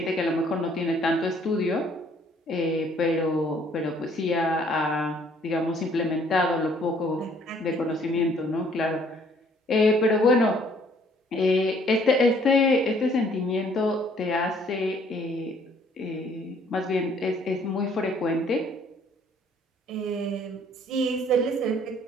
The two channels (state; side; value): normal; both; correlation 0.61